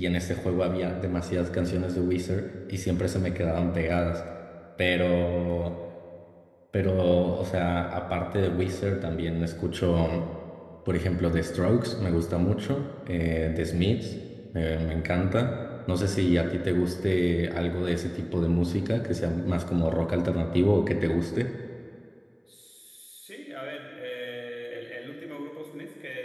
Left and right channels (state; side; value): identical; both; correlation 1.00